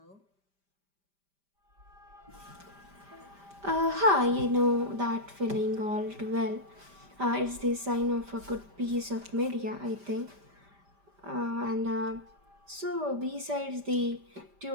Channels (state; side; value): late; left; 5.1 ms